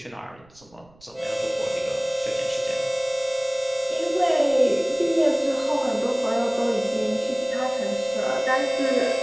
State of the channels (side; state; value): right; noise; rumble, 28 dB below the sound